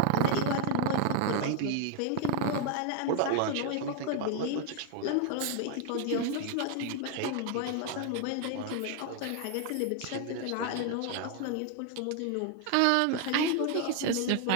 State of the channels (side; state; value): both; different; correlation 0.01